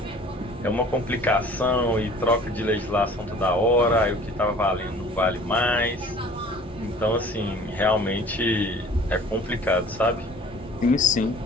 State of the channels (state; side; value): normal; both; correlation 0.48